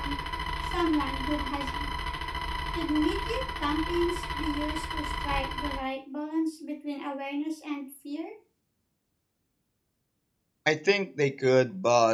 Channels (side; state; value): both; identical; correlation 1.00